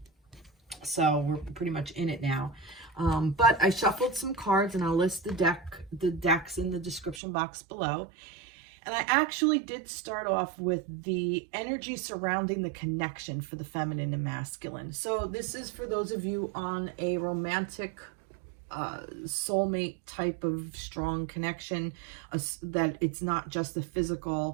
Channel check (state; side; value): drops out; left; at 7.2 s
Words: So we're pretty much in it now. But I shuffled some cards, and I'll list the decks in the description box below. And I actually did start off with the energy surrounding the connection for the feminine and masculine. So this is for those of you on a romantic soulmate type of strong connection, that it's not just the